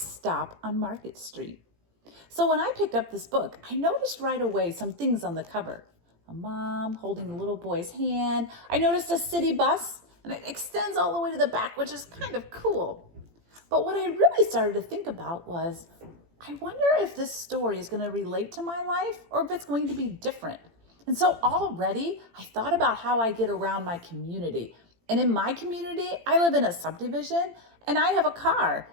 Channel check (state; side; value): late; left; 18 ms